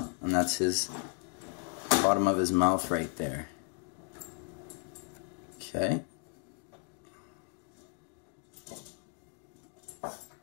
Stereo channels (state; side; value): quieter; right; 38.6 dB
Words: and that's his bottom of his mouth right there. Okay.